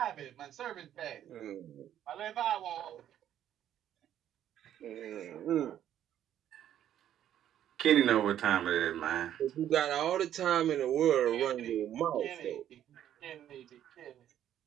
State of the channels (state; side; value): quieter; left; 10.9 dB